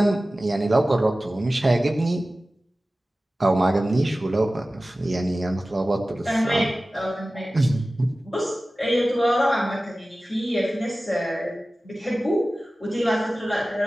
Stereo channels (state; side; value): normal; both; correlation 0.96